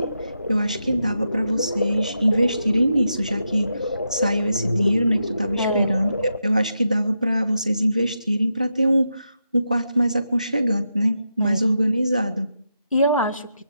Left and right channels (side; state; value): both; inverted; correlation -0.85